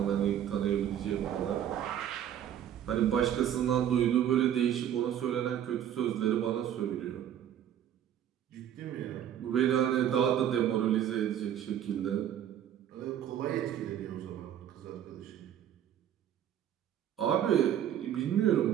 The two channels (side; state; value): left; quieter; 10.3 dB